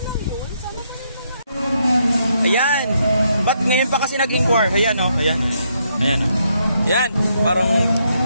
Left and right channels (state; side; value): inverted; both; correlation -0.76